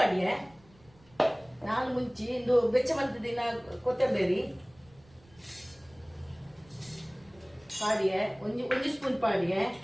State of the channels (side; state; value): right; noise; rumble, 28 dB below the sound